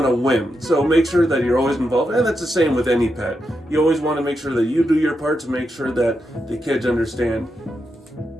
a whim. So make sure that you're always involved, and that's the same with any pet. You always want to make sure that you do your part to make sure that the kids understand.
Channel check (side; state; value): both; normal; correlation 0.85